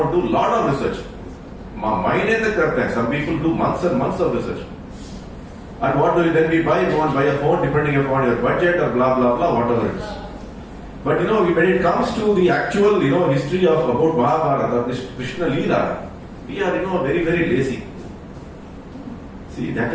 and do a lot of research. Some people do months and months of research. And what do you then we buy? You want to buy a phone depending upon your budget or blah blah blah, whatever it is. But when it comes to the actual history of about Mahabharata, Krishna Leela, we are very lazy. See, that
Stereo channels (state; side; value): identical; both; correlation 1.00